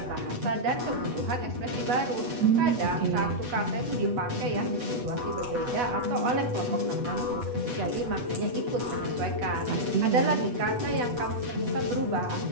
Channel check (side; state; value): left; late; 8.2 ms